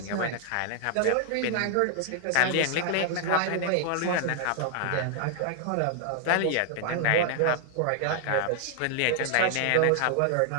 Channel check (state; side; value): different; both; correlation 0.00